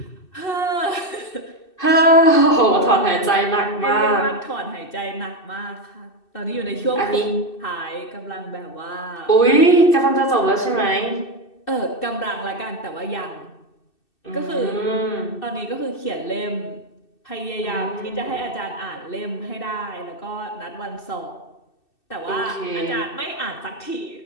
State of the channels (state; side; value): late; right; 2.6 ms